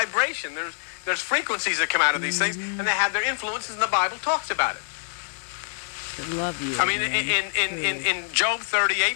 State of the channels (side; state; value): right; silent; 61 dB below the other